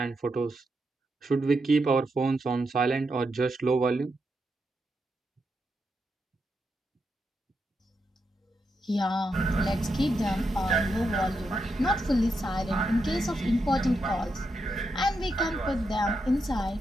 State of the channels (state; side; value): normal; both; correlation 0.84